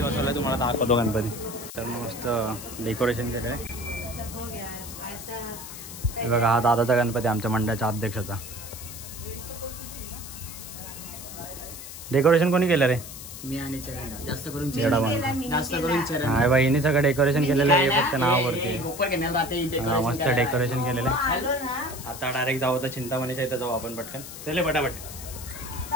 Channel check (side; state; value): left; noise; hiss, 12 dB below the sound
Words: बसवला, तुम्हाला दाखवतो गणपती. तर मस्त डेकोरेशन केलं आहे. हे बघा हा दादाचा गणपती, आमच्या मंडळाच्या अध्यक्षाचा. डेकोरेशन कोणी केलं रे? मी आणि चरण. जास्त करून चरण. हा बाई, हिने सगळं डेकोरेशन केलेलं आहे, फक्त नावावरती. मस्त डेकोरेशन केलेलं आहे. आता डायरेक्ट जाऊ तर चिंतामणीच्या इथं जाऊ आपण पटकन. चले पटापट.